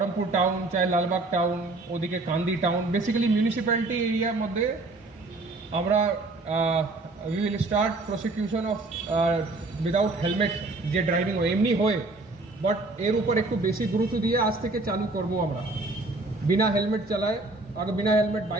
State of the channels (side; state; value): left; quieter; 3.1 dB